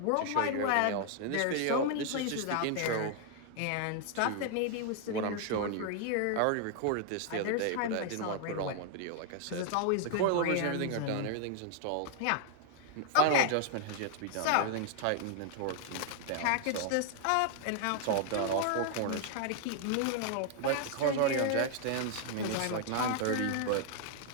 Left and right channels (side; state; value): both; different; correlation 0.00